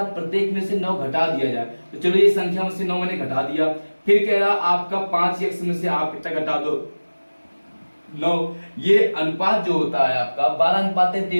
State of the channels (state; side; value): inverted; both; correlation -1.00